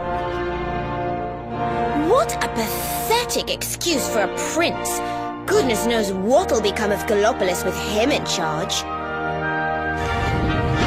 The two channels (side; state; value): both; identical; correlation 1.00